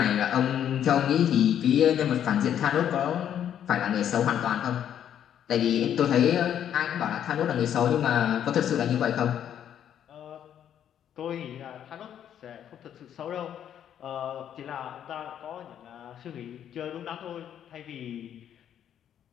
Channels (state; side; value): quieter; right; 9.8 dB